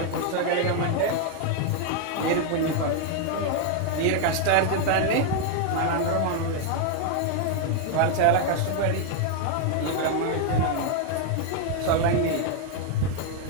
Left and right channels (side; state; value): both; different; correlation 0.00